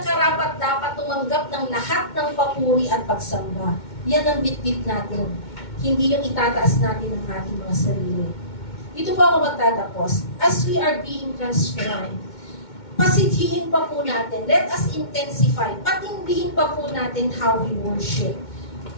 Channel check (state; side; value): late; right; 2.2 ms